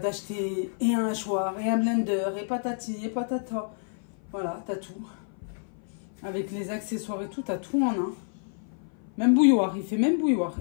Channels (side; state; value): right; silent; 55 dB below the other